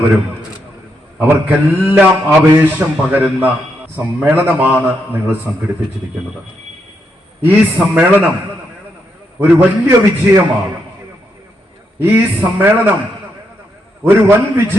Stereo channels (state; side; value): normal; both; correlation 0.80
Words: അവർക്കെല്ലാം ആവേശം പകരുന്ന സമ്മേളനമാണ് നിങ്ങൾ സംഘടിപ്പിച്ചിരിക്കുന്നത്. ഈ സമ്മേളനം ഒരു വലിയ വിജയമാണ്. ഈ സമ്മേളനം ഒരു വൻ